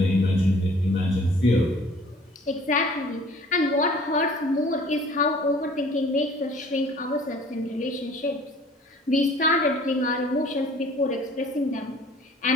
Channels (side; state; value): both; normal; correlation 0.52